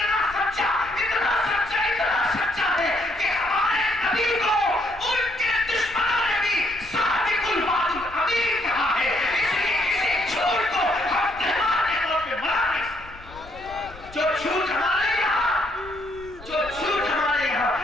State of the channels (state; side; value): noise; left; rumble, 19 dB below the sound